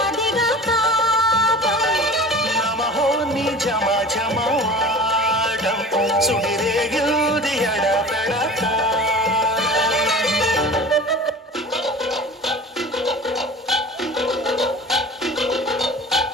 నమహో నీ జమ జమాడం సుడిరేగిల్ది ఎడపెడతా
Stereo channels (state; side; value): normal; both; correlation 0.39